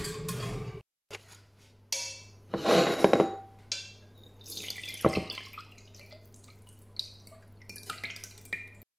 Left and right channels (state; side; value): identical; both; correlation 1.00